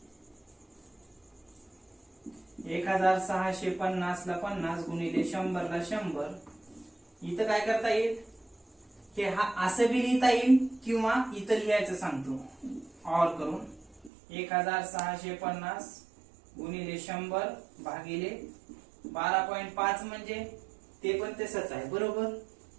1650 ला 50 गुणिले 100 ला 100. इथं काय करता येईल, हे हा असं बी लिहिता येईल किंवा इथं लिहायचं सांगतो ऑर करून. 1650 गुणिले 100 भागिले 12.5 म्हणजे ते पण तसंच आहे बरोबर.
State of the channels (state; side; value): drops out; left; at 14.1 s